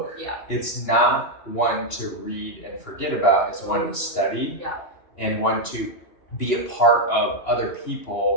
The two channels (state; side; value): late; right; 2.9 ms